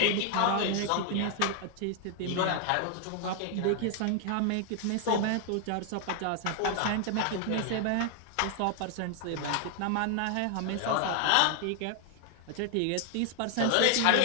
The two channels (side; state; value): both; different; correlation 0.00